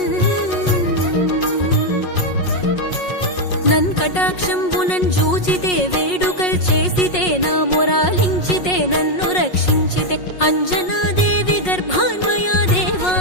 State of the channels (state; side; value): late; right; 5.5 ms